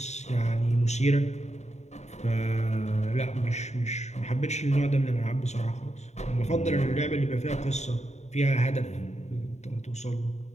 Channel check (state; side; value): late; right; 0.33 ms